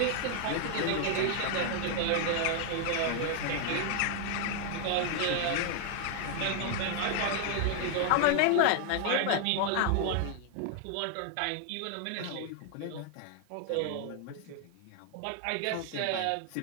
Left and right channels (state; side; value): different; both; correlation 0.00